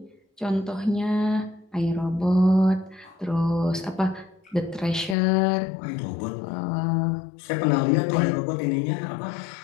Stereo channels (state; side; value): drops out; right; at 5.2 s